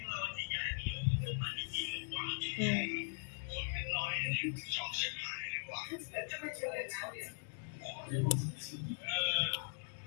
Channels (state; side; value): silent; right; digital silence